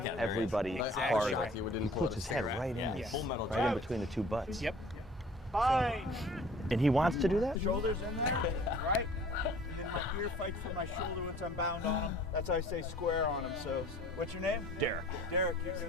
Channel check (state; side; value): normal; both; correlation 0.50